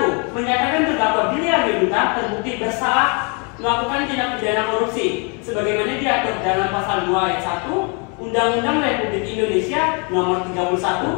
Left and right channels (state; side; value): quieter; right; 34.6 dB